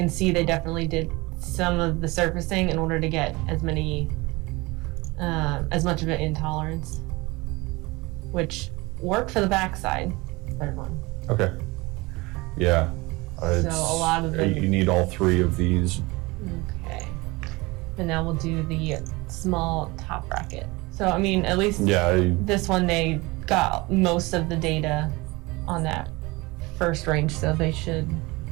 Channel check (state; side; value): quieter; left; 23.3 dB